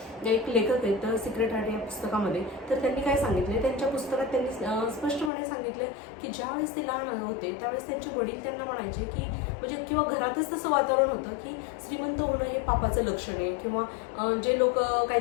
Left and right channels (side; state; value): right; drops out; at 5.3 s